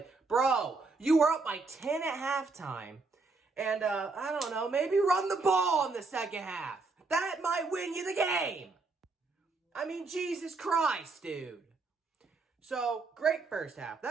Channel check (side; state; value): left; quieter; 3.9 dB